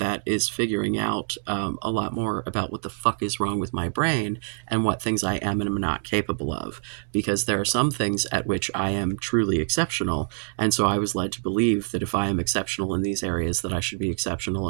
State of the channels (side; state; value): left; silent; digital silence